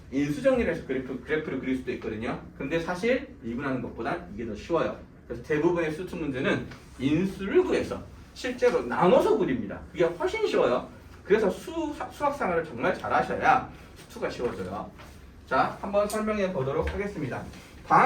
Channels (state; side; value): identical; both; correlation 1.00